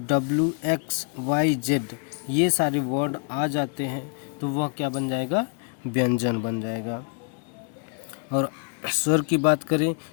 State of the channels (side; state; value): right; quieter; 38.4 dB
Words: ये सारे वर्ड आ जाते हैं, तो वह क्या बन जाएगा? व्यंजन बन जाएगा। और स्वर की बात करें